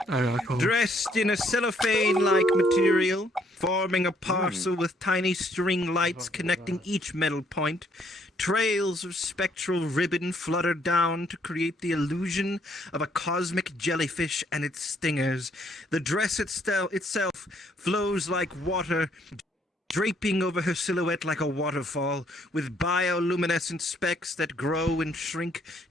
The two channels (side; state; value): both; normal; correlation 0.68